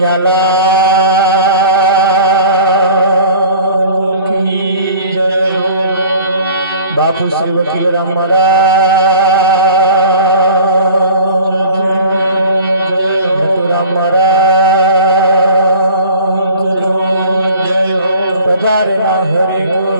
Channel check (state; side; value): inverted; both; correlation -0.46